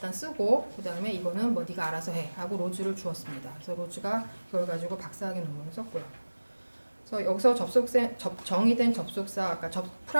쓰고 그 다음에 이거는 뭐 네가 알아서 해 하고 로즈를 주었습니다. 그래서 로즈가 이걸 가지고 박사학위 논문을 썼고요. 그래서 여기서 정의된 접속사, 그러니까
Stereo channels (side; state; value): both; inverted; correlation -1.00